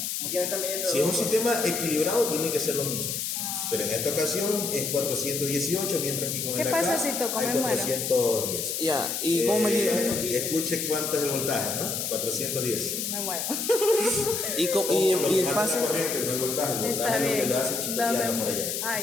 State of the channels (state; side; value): noise; left; hiss, 2 dB below the sound